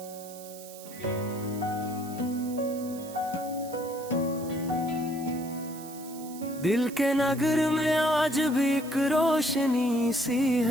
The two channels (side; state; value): right; noise; hiss, 16 dB below the sound